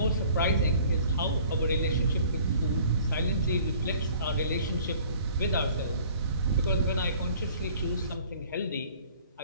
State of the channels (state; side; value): inverted; both; correlation -0.53